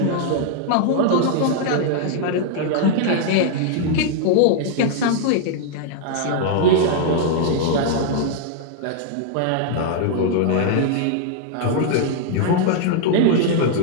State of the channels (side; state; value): both; different; correlation -0.01